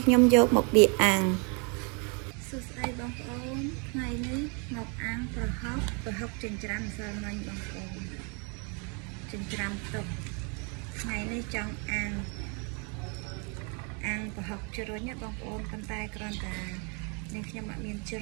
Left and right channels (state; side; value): quieter; left; 35.1 dB